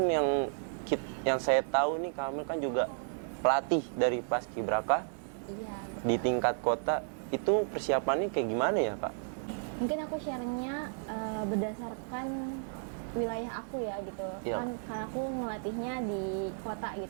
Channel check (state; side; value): silent; left; digital silence